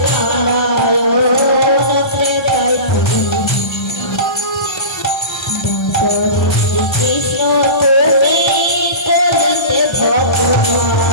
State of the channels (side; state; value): right; late; 1.3 ms